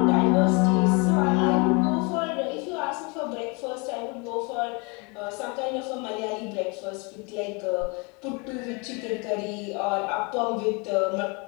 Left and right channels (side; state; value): right; quieter; 30.7 dB